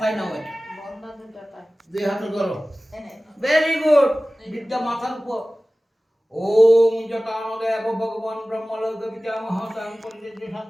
নাও এটা, দুই হাতে ধরো, ভেরি গুড, বিদ্যা মাথার উপর। ওম জটানদেব ভগবান ব্রহ্মলোক পিতামহ স্বয়ং পরিদেব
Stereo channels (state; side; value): normal; both; correlation 0.97